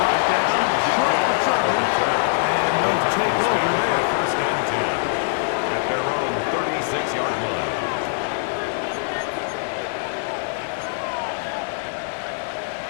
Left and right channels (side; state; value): right; silent; digital silence